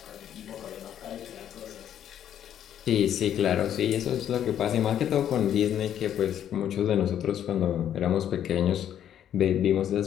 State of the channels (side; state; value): right; quieter; 10.2 dB